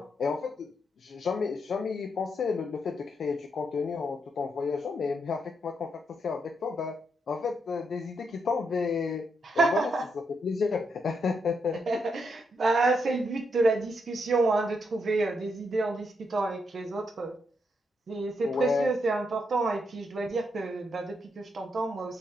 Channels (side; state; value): both; normal; correlation 0.80